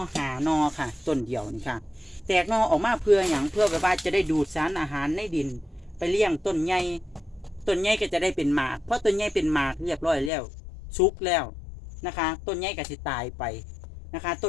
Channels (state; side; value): drops out; right; at 10.3 s